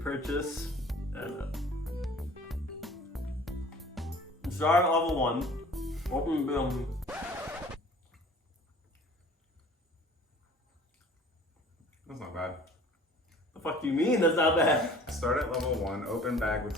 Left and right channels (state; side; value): normal; both; correlation 0.48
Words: And start at level 1. Open the That's not bad. The fuck do you mean that's not bad? Start at level 1, open bag with